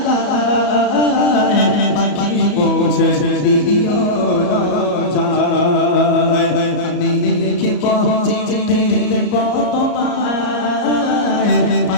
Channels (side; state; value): right; late; 33 ms